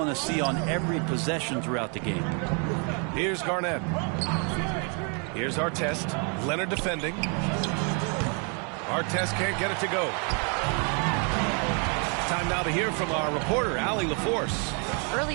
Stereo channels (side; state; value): left; quieter; 37.1 dB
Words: to see on every possession throughout the game. Here's Garnett. Here's Artest. Leonard defending. Artest can't get it to go. Time now to hear from our reporter, Allie LaForce.